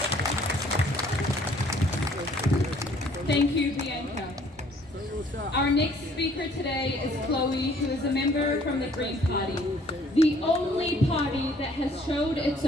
Thank you, Bianca. Our next speaker today is Chloe, who is a member from the Green Party, the only party that has showed its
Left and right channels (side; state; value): both; normal; correlation 0.59